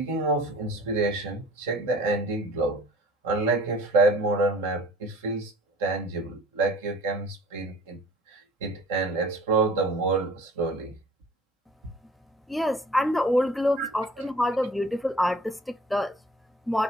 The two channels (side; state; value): both; normal; correlation 0.48